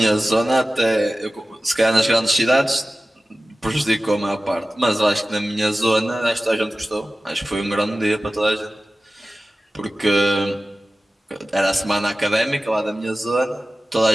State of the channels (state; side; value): normal; both; correlation 0.96